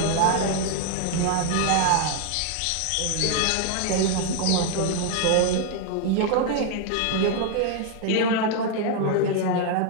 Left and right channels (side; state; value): both; different; correlation 0.00